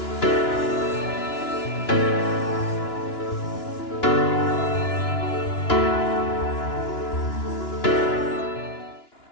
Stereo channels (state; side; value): late; right; 2.9 ms